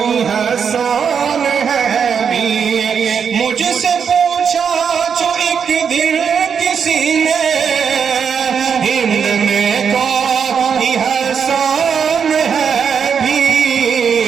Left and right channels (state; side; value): quieter; left; 6.9 dB